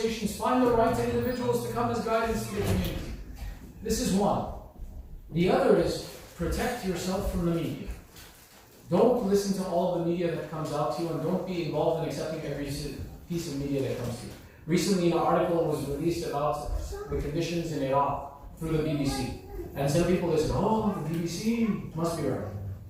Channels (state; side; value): identical; both; correlation 1.00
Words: find the right individuals to come as guidance to your community. This is one. The other is protect yourself from the media. Don't listen to all of the media that comes out to you, and don't be involved in accepting every piece of media that comes to you. Recently, an article was released about the conditions in Iraq through the BBC. And some people say, oh, the BBC must be right.